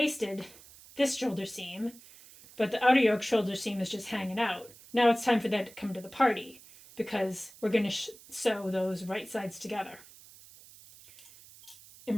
this shoulder seam, but the outer yoke shoulder seam is just hanging out. Now it's time for that to come to the party, because we're going to sew those right sides together. And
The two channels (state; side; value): noise; right; hiss, 21 dB below the sound